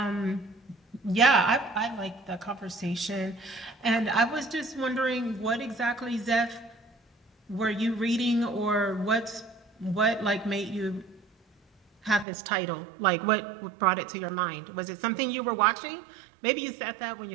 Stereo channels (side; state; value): left; drops out; at 12.2 s